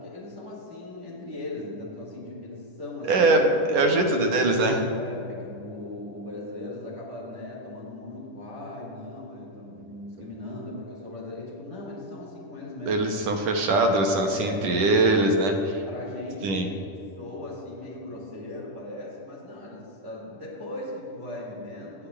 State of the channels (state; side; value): late; left; 10 ms